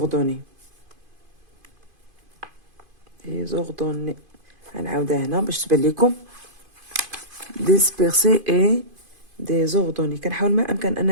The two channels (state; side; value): late; left; 2.5 ms